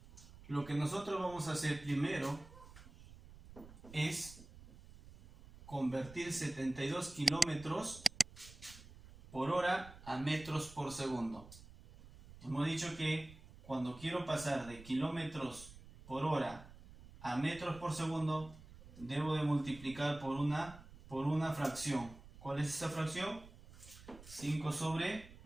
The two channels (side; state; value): right; noise; rumble, 18 dB below the sound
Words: lo que nosotros vamos a hacer primero es convertir 72 kilómetros por hora a metros por segundo. Hemos dicho que cuando quiero pasar de kilómetros por hora a metros por segundo, debo de multiplicar por una fracción. ¿Cuál es esa fracción? 5 sobre